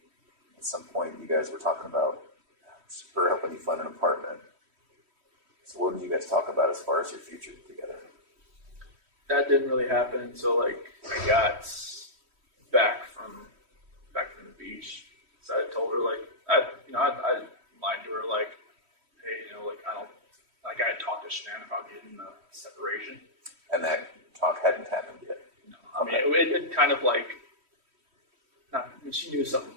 at some point you guys were talking about her helping you find an apartment? So what did you guys talk about as far as your future together? That didn't really happen until like I got back from the beach. So I told her like I lied to her like, hey, like I had talked to Shanann about getting the separation. And that talk hadn't happened yet. No, I mean it kind of like she knew something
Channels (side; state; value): left; late; 3.1 ms